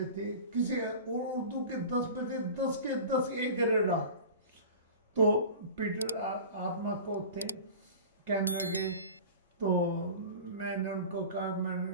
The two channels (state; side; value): inverted; both; correlation -0.37